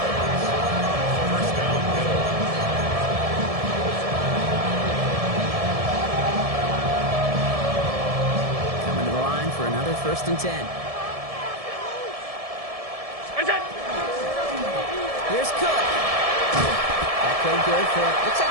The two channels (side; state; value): left; late; 1.7 ms